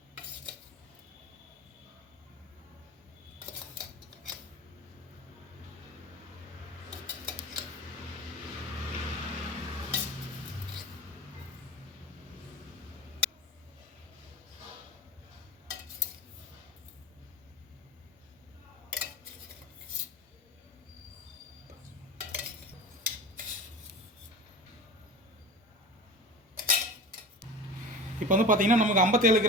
இப்போ வந்து பார்த்தீங்கன்னா நமக்கு 57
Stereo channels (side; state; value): both; normal; correlation 0.34